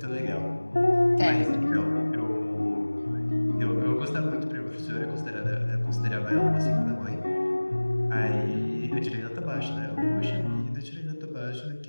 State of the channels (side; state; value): both; inverted; correlation -1.00